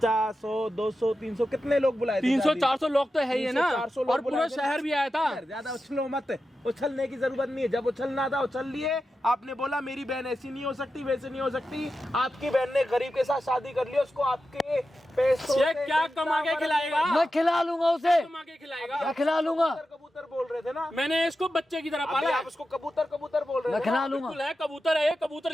100, 200, 300 कितने लोग बुलाए थे? 300-400 लोग तो है ही है ना। 300-400 लोग और पूरा बुलाए थे। शहर भी आया था। ज्यादा उछलो मत, उछलने की जरूरत नहीं है। जब उछलना था उछल लिए। आपने बोला मेरी बहन ऐसी नहीं हो सकती, वैसे नहीं हो सकती। आपकी बहन ने गरीब के साथ शादी कर ली, उसको आपके पैसों ये क्या कमा के खिलाएगा? मैं खिला लूंगा उसे, कमा के खिलाएगा। मैं खिला लूंगा। कबूतर बोल रहे थे ना, मैंने इसको बच्चे की तरह अभी पाला है। आप उसको कबूतर कबूतर बोल रहे मैं थे ना? खिला लूंगा। बिल्कुल है, कबूतर है ये।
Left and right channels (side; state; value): both; normal; correlation 0.91